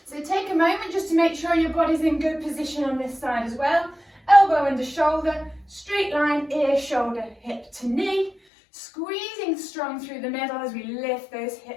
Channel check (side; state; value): right; drops out; at 8.3 s